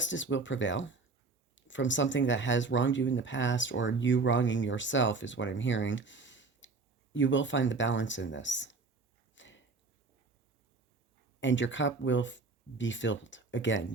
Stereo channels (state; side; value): quieter; left; 4.0 dB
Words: will prevail from something that has wronged you in the past, or you wronging yourself is what I'm hearing. You will find the balance in this. And your cup will be filled again.